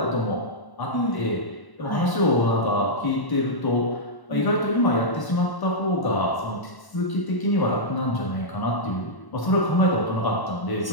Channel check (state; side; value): late; right; 1.1 ms